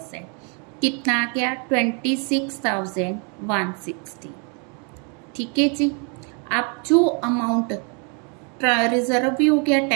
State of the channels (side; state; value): left; quieter; 36.7 dB